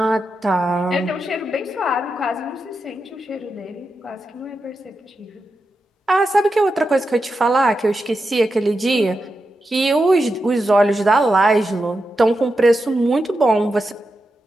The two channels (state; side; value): normal; both; correlation 0.88